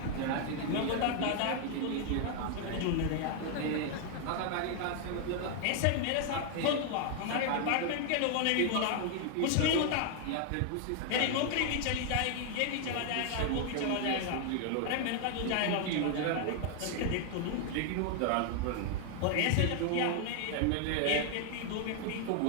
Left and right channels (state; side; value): different; both; correlation 0.00